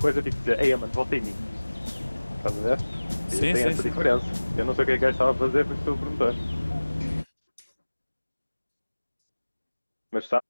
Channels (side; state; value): both; inverted; correlation -1.00